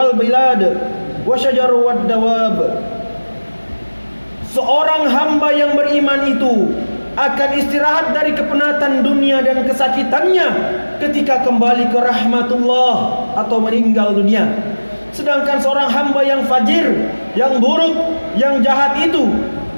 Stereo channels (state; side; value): inverted; both; correlation -1.00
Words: bilad wa syajaru wad dawab." Seorang hamba yang beriman itu akan istirahat dari kepenatan dunia dan kesakitannya ketika kembali ke rahmatullah atau meninggal dunia. Sedangkan seorang hamba yang fajir, yang buruk, yang jahat itu,